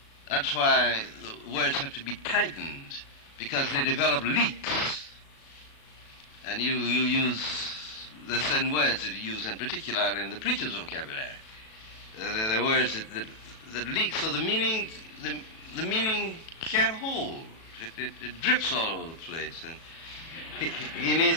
that's why the words have to be tightened, because they develop leaks. And you use the certain words that you use, in particular in the preacher's vocabulary. They're words that leak, so the meaning can't hold. It drips all over the place, and he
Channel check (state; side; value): late; right; 37 ms